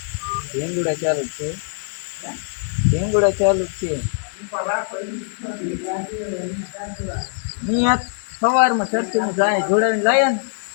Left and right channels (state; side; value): silent; right; digital silence